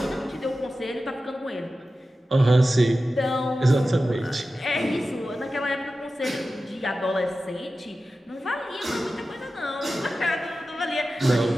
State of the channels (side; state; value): both; normal; correlation 0.94